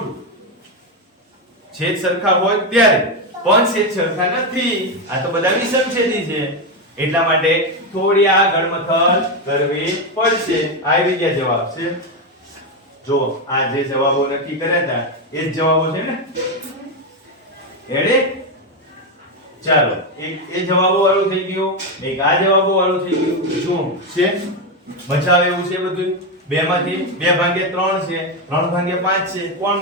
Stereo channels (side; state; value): both; normal; correlation 0.09